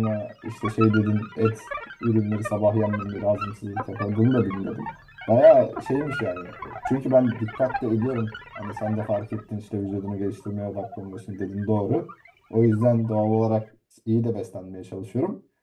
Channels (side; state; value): both; identical; correlation 1.00